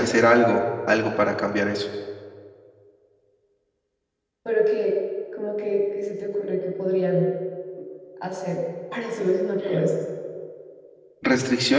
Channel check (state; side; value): identical; both; correlation 1.00